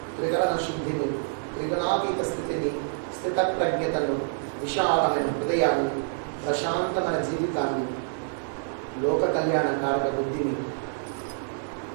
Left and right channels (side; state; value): left; silent; digital silence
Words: త్రిగణ శుద్ధిని, త్రిగణాతీత స్థితిని, స్థిత ప్రజ్ఞతను, విశాలమైన హృదయాన్ని, ప్రశాంతమైన జీవితాన్ని, లోక కళ్యాణ కారక బుద్ధిని